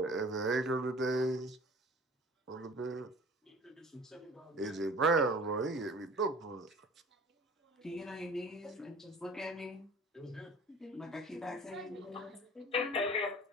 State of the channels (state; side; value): normal; both; correlation 0.45